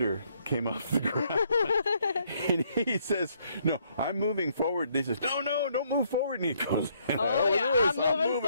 came off the ground. And he says, "No, I'm moving forward." They says, "No, don't move forward." And he goes, "Oh yeah, I'm moving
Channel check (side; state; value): both; inverted; correlation -0.69